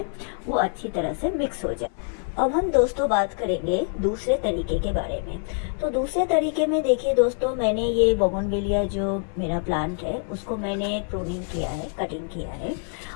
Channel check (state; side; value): silent; right; 58 dB below the other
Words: वो अच्छी तरह से मिक्स हो जाए। अब हम दोस्तों बात करेंगे दूसरे तरीके के बारे में। तो दूसरे तरीके में देखिए दोस्तों, मैंने ये बोगनविलिया जो मेरा प्लांट है उसको मैंने प्रूनिंग किया है, कटिंग किया है,